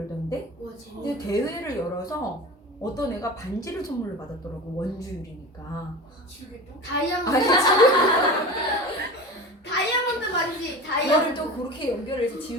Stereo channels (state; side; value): normal; both; correlation 0.32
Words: 근데 대회를 열어서 어떤 애가 반지를 선물로 받았더라고. 원주율이니까. 다이아몬드 다이아몬드 반지 그거를 다이아몬드 또 그렇게 연결해서